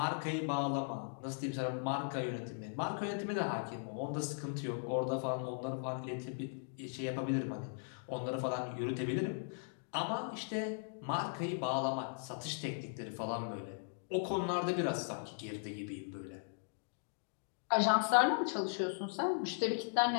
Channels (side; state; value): right; silent; digital silence